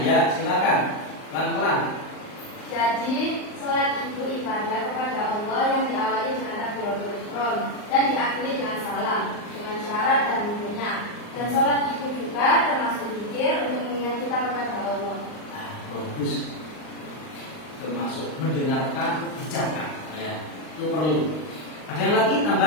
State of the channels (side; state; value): right; late; 39 ms